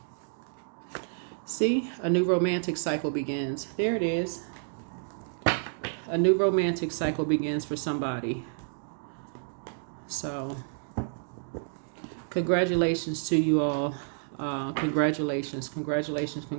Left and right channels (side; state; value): left; silent; digital silence